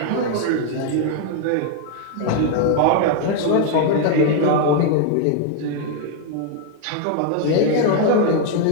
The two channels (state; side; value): different; both; correlation 0.00